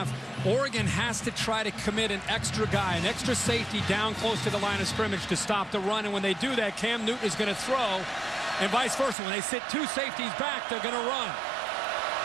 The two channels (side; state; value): left; drops out; at 9.2 s